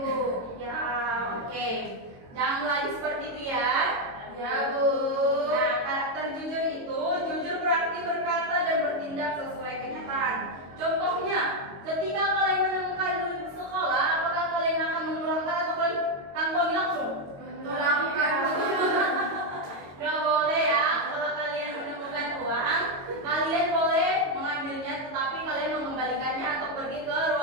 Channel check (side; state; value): left; late; 22 ms